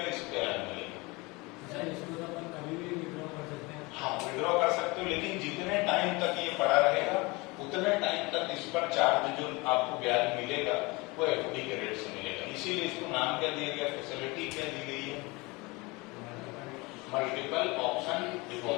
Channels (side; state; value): right; quieter; 25.0 dB